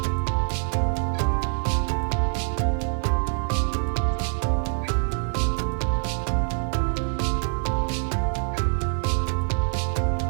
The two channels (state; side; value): silent; left; 62 dB below the other